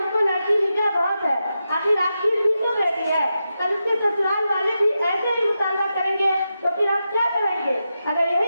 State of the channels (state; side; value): inverted; both; correlation -0.88